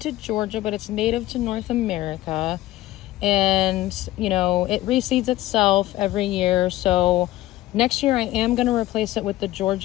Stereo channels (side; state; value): right; quieter; 16.0 dB